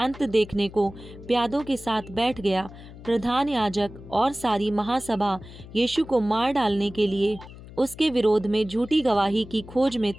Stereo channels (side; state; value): left; noise; hum, 17 dB below the sound